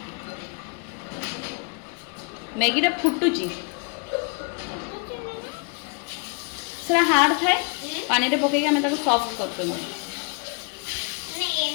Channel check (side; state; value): right; quieter; 34.8 dB